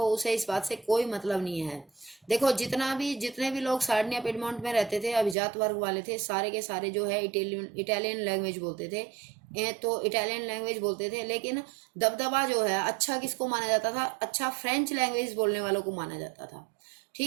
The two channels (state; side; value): drops out; left; at 5.4 s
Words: उसे इस बात से कोई मतलब नहीं है। देखो जितने भी लोग सार्डिनिया पिडमोंट में रहते थे, अभिजात वर्ग वाले थे, सारे के सारे जो है इटालियन लैंग्वेज बोलते थे। तो इटालियन लैंग्वेज बोलते थे, लेकिन दबदबा जो है अच्छा किसको माना जाता था, अच्छा फ्रेंच लैंग्वेज बोलने वालों को माना जाता था।